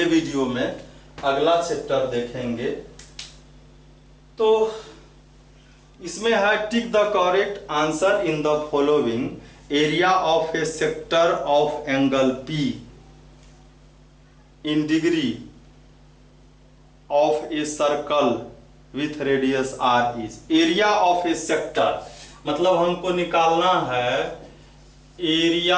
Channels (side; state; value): both; identical; correlation 1.00